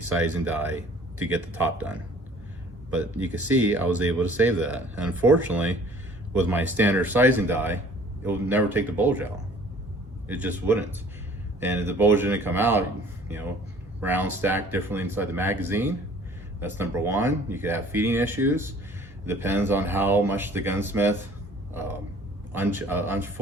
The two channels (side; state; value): both; normal; correlation 0.52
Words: sizing die to get the top done. But you can see I was able to save that. And unfortunately, with my standard sizing die, it would never take the bulge out. It just wouldn't. And if the bulge didn't come out, you know, rounds stacked differently inside the magazine. That's number one. You could have feeding issues. It depends on how much the gunsmith